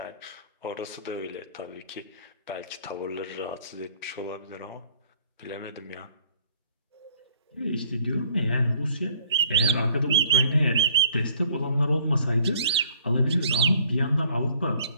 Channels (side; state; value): both; inverted; correlation -0.59